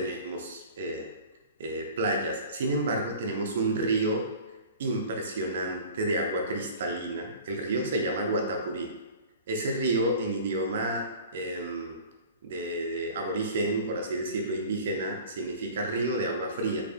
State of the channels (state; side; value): inverted; both; correlation -0.42